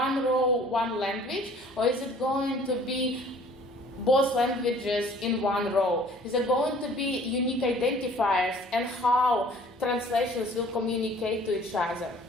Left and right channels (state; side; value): normal; both; correlation 0.53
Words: row, one language, or is it going to be both languages in one row? Is there going to be unique identifiers and how translations will communicate to each other?